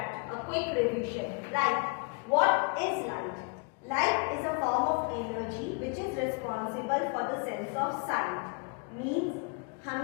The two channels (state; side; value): quieter; right; 35.0 dB